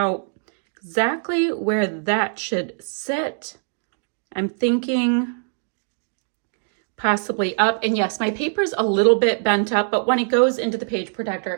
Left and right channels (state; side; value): silent; left; 64 dB below the other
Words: exactly where that should sit. I'm thinking possibly up. And yes, my paper's a little bit bent up, but when it goes into the page